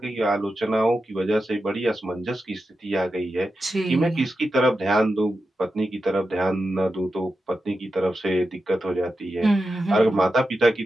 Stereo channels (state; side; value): normal; both; correlation 0.90